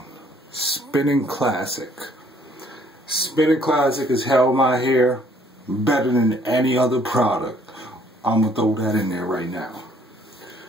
Spinning Classic. Spinning Classic has held my hair better than any other product. I'm going to throw that in there right now.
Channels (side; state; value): both; normal; correlation 0.62